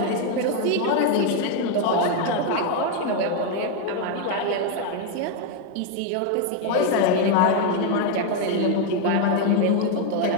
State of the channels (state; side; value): different; both; correlation 0.01